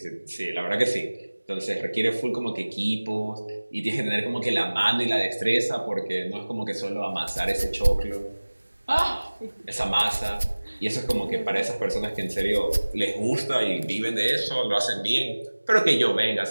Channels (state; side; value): inverted; both; correlation -1.00